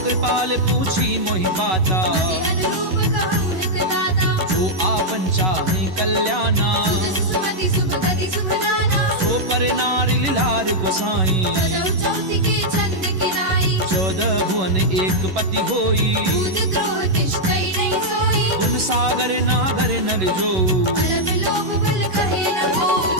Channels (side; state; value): left; late; 11 ms